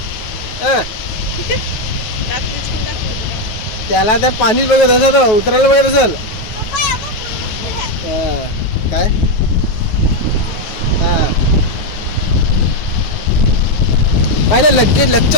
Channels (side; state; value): right; late; 9.3 ms